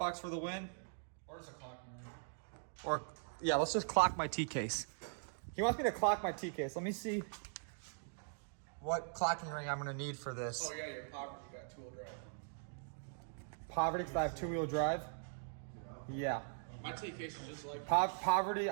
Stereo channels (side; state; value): left; silent; digital silence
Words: for the win? Or it's a clock. Or, yeah, let's just clock my T-case. He wants me to clock my T-case. Let me see what clocking ring I'm gonna need for this. Oh yeah, your poverty, you got 2-wheel drive. Poverty, because I have 2-wheel drive? Yeah. My T-case is just like Poverty,